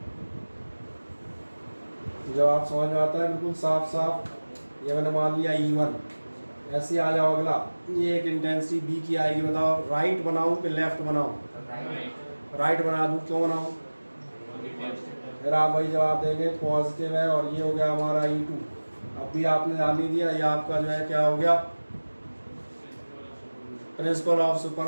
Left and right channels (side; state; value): both; inverted; correlation -1.00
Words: जब आप समझ में आता है बिल्कुल साफ साफ, ये मैंने मान लिया E1, ऐसे आ जाओ अगला। ये एक इंटेंसिटी बी की आएगी, बताओ राइट बनाऊं कि लेफ्ट बनाऊं, राइट बना दूं, क्यों बनाऊं, फिर आप वही जवाब देंगे पॉजिटिव है, और ये हो गया हमारा E2। अब भी आपने ध्यान नहीं दिया, ये आपका जो है क्या हो गया, प्रिंसिपल ऑफ